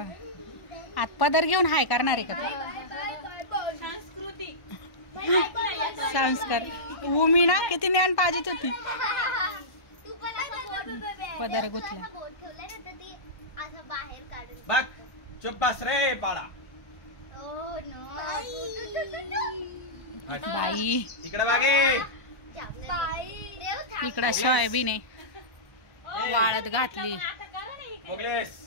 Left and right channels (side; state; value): right; late; 1.0 ms